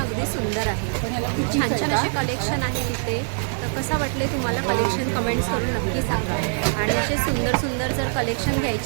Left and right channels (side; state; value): left; silent; digital silence